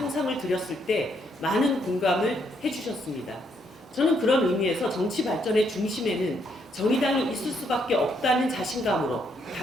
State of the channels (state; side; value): normal; both; correlation 0.73